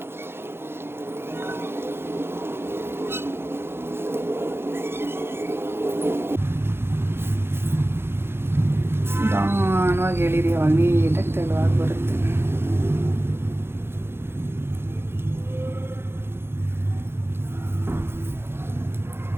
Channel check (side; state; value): left; late; 0.11 ms